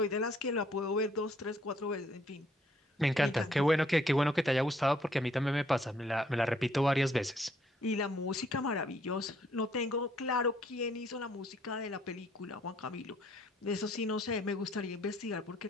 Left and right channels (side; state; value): both; normal; correlation 0.66